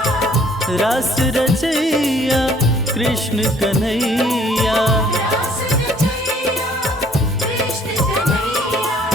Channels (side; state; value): both; normal; correlation 0.60